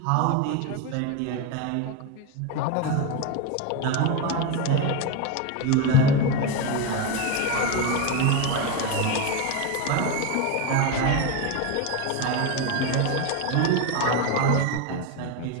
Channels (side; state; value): both; different; correlation 0.03